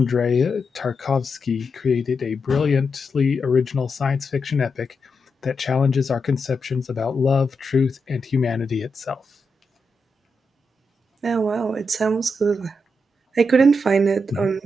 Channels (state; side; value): normal; both; correlation 0.85